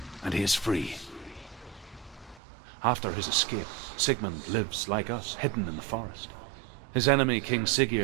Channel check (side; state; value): left; drops out; at 2.4 s